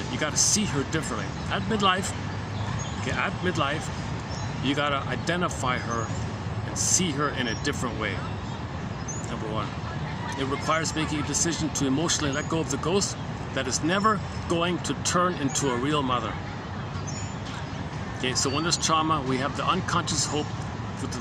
You got to see her differently. At midlife, you got to identify her and see her in a different way. Number one, it requires making a decision to emotionally let go of the ghost that is never going to turn into a real mother. Okay, so when there's trauma, we have the unconscious hope for the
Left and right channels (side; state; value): both; identical; correlation 1.00